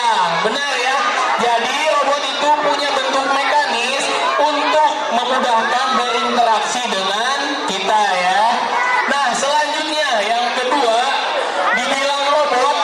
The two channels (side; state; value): both; identical; correlation 1.00